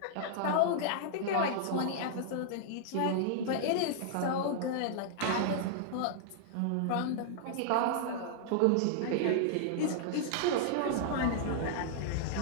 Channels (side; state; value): both; different; correlation -0.01